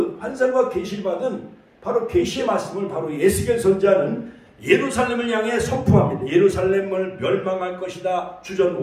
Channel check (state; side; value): identical; both; correlation 1.00